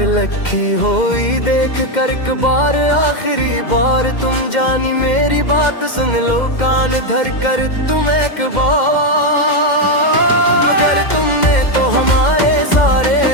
लिखी होई देख कर एक बार आखिरी बार, तुम जानी मेरी बात सुन लो कान धर कर तुम एक बार। मगर तुमने तो हमारे सारे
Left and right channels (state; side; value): late; right; 2.1 ms